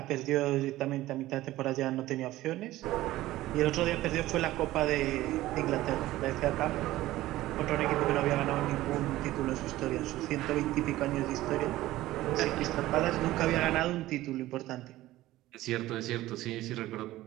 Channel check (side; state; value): left; quieter; 16.2 dB